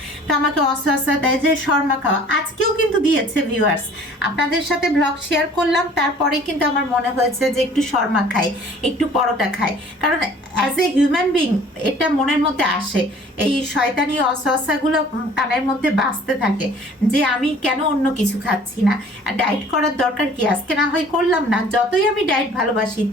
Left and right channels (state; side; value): normal; both; correlation 0.51